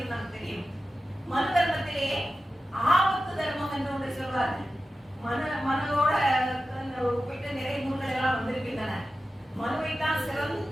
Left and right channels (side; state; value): both; normal; correlation 0.93